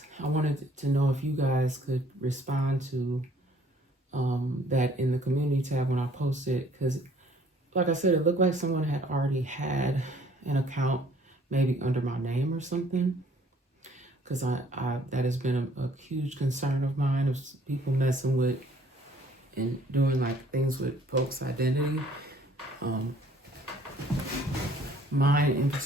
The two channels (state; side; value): normal; both; correlation 0.59